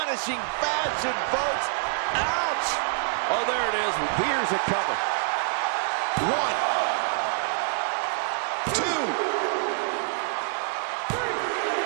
fashion, folks. Ouch! Oh, there it is. Here's a cover. 1, 2, 3.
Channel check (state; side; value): silent; left; digital silence